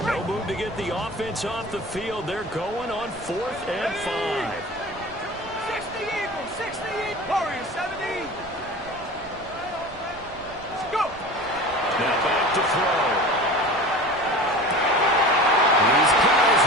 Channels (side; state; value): right; noise; rumble, 22 dB below the sound